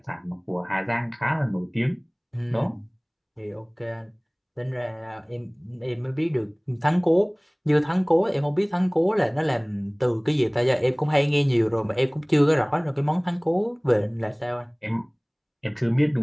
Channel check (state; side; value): identical; both; correlation 1.00